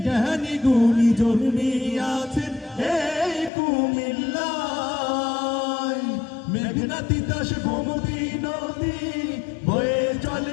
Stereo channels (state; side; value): drops out; right; at 3.5 s